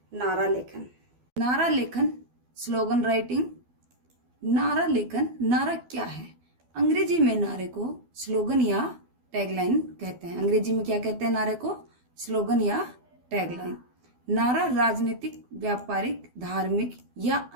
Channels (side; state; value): left; late; 12 ms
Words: नारा लेखन। नारा लेखन, स्लोगन राइटिंग। नारा लेखन, नारा क्या है? अंग्रेजी में नारे को स्लोगन या टैगलाइन कहते हैं। अंग्रेजी में क्या कहते हैं नारे को? स्लोगन या टैगलाइन। नारा राजनीतिक, व्यापारिक, धार्मिक या